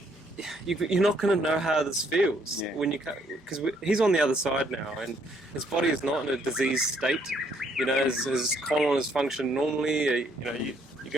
you're not going to know how this feels when because he's on the other side now, and his body is not in a diseased state. His colon is functioning normally. You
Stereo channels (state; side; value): normal; both; correlation 0.69